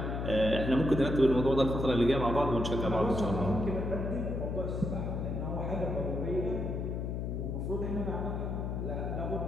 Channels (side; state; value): left; noise; hum, 2 dB below the sound